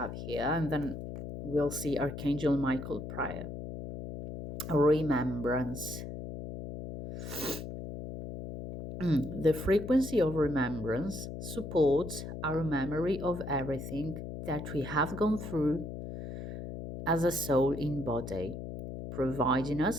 here, and then we'll see Archangel Michael prayer. Remembrance. The frequency of remembrance supports our memory of everything that we have gone through as a soul in body, providing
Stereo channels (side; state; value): left; noise; hum, 8 dB below the sound